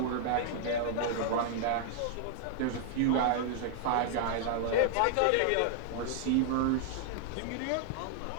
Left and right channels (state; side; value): different; both; correlation -0.01